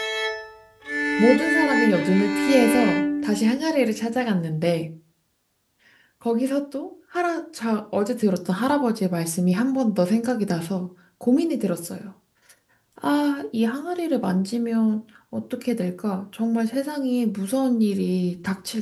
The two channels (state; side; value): identical; both; correlation 1.00